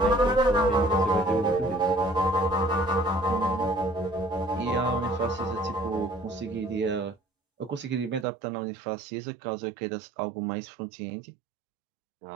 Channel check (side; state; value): left; drops out; at 8.2 s